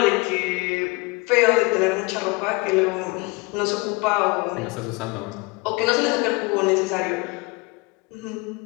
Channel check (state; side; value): quieter; right; 26.4 dB